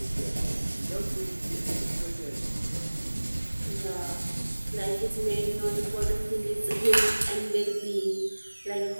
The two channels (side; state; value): both; inverted; correlation -1.00